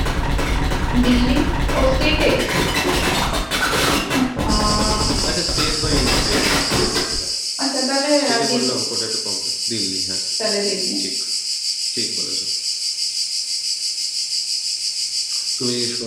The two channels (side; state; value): both; identical; correlation 1.00